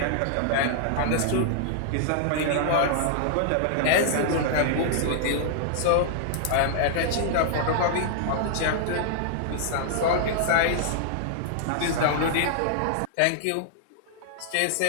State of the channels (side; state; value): both; different; correlation -0.01